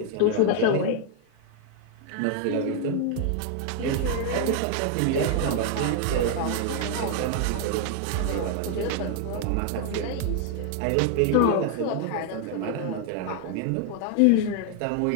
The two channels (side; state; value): both; different; correlation 0.00